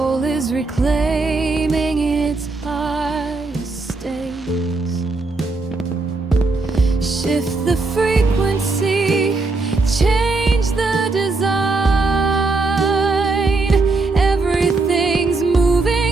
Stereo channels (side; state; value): left; quieter; 3.5 dB